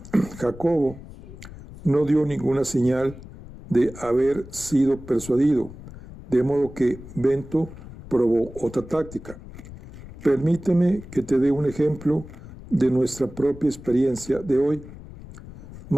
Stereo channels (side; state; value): left; noise; rumble, 16 dB below the sound